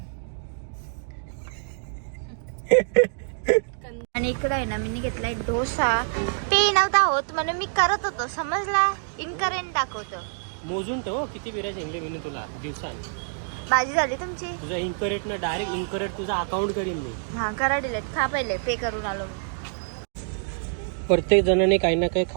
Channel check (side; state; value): left; silent; digital silence